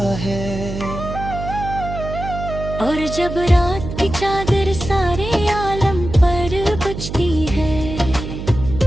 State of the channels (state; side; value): noise; right; hum, 8 dB below the sound